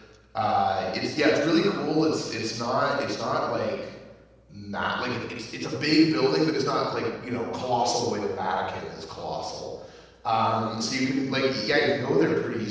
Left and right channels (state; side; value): identical; both; correlation 1.00